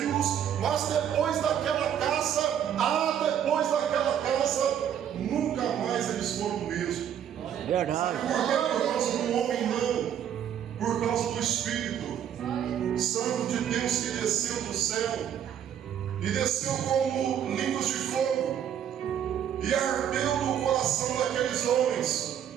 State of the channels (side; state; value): left; quieter; 9.5 dB